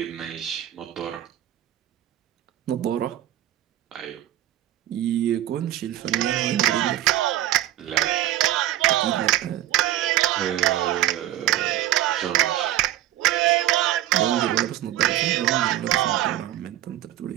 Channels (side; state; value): left; quieter; 13.6 dB